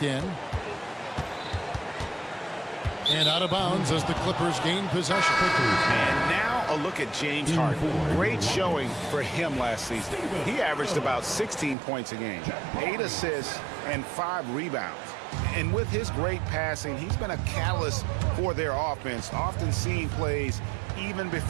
in. And out of bounds as the Clippers gain possession. And now a look at James Harden. Great showing for him last season. He averaged about 16 points a game, 8 assists, and 5 rebounds. And with his great passing, he's been a catalyst for their offense, often seeing plays even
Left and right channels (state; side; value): drops out; left; at 11.8 s